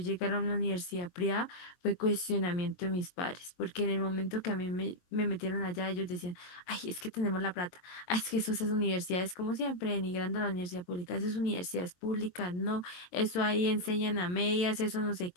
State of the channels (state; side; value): late; right; 22 ms